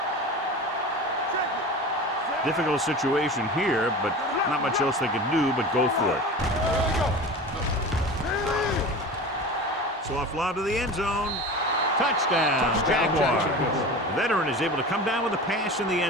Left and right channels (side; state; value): both; normal; correlation 0.33